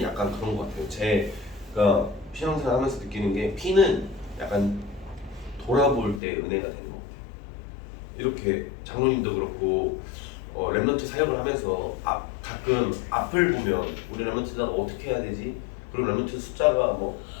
약간 그런 것 같아요. 제가 신앙생활 하면서 느끼는 게 피는 약간 돌아볼 때 은혜가 되는 것 같아요. 이렇게 장로님도 그렇고 렘넌트 사역을 하면서 가끔 앞을 보면 우리 렘넌트가 어떻게 해야 되지? 그리고 렘넌트 숫자가 뭐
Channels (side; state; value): right; drops out; at 6.2 s